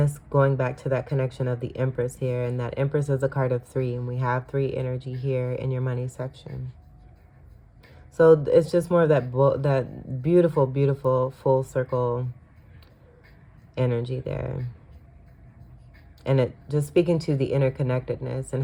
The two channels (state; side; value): identical; both; correlation 1.00